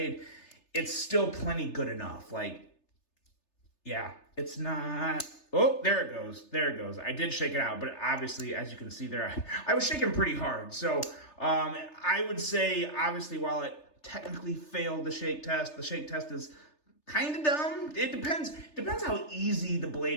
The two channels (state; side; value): late; right; 3.3 ms